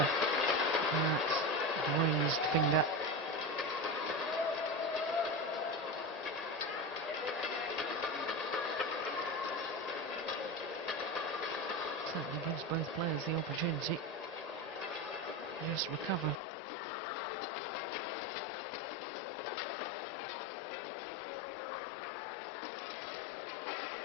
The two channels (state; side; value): drops out; right; at 16.4 s